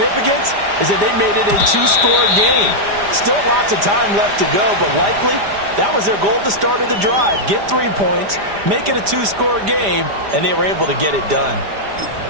is that they made it a 2-score game. Still lots of time left to go, but likely that was their goal at the start of the drive. Get 3 points, make it a 2-score game, and they were able to get it done.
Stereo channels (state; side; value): late; left; 5.0 ms